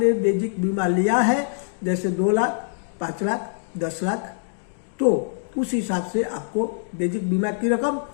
बेसिक बीमा लिया है, जैसे 2 लाख, 5 लाख, 10 लाख, तो उस हिसाब से आपको बेसिक बीमा की रकम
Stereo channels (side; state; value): right; silent; digital silence